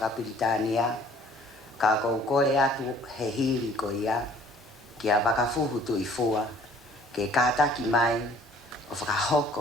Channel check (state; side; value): normal; both; correlation 0.55